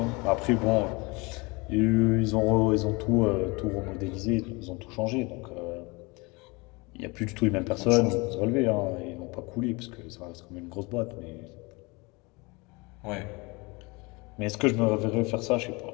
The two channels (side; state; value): right; quieter; 26.4 dB